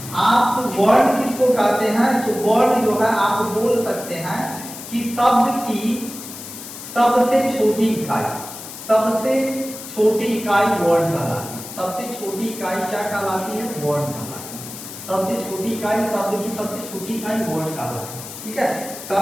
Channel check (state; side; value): noise; left; hiss, 12 dB below the sound